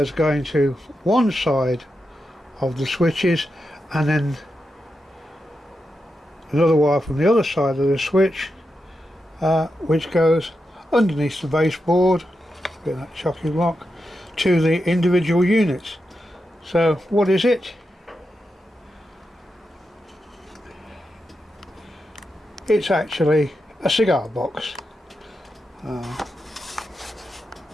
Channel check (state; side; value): normal; both; correlation 0.88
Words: going to one side of the switches, and then another wire from the other side of the switch which goes underneath the baseboard, that chocolate block, to the individual units. So what is it? It's actually a cigar box.